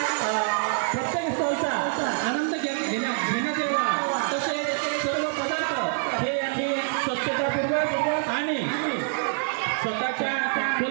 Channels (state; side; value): silent; left; 61 dB below the other